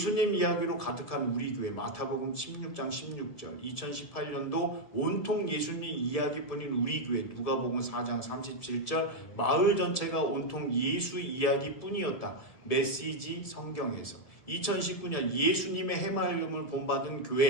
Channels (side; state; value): right; late; 1.7 ms